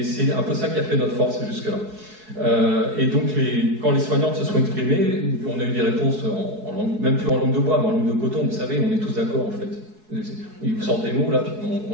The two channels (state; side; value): late; left; 4.7 ms